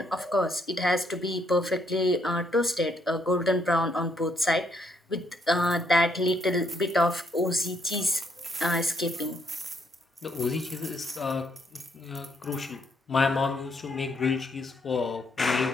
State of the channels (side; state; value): both; normal; correlation 0.72